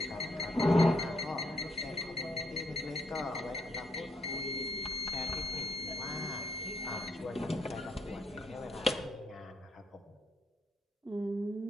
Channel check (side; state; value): both; normal; correlation 0.73